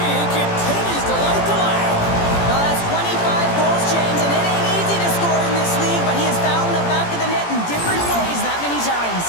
he continues to light the lamp. Well, that's 25 goals, James, and it ain't easy to score in this league, but he has found the back of the net in different ways that many times.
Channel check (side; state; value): right; late; 17 ms